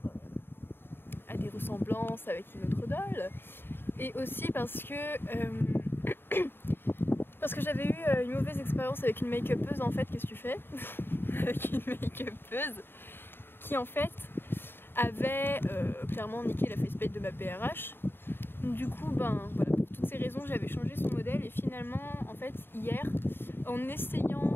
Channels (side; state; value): right; late; 0.10 ms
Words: à des ressemblances avec une autre doll et aussi parce que j'avais eu une mauvaise expérience avec une make-upeuse. En fait, qu'est-ce que tu fais avec une make-upeuse qui en fait avait clairement niqué la faceplate de ma BRH. Du coup, voilà, pour toutes ces raisons, j'avais changé son modèle et finalement, en fait, hier, en